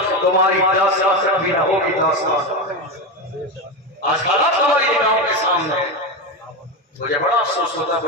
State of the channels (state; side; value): normal; both; correlation 0.15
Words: تمہاری داستان بھی نہ ہوگی داستان۔ آج حالات ہماری نگاہوں کے سامنے ہے، مجھے بڑا افسوس ہوتا ہے،